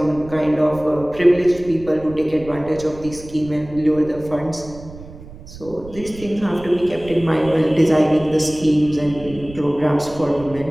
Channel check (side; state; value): right; noise; rumble, 17 dB below the sound